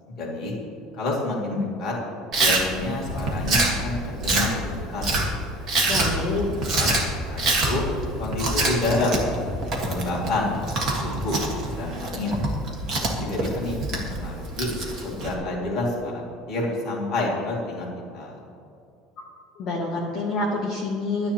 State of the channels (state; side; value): normal; both; correlation 0.43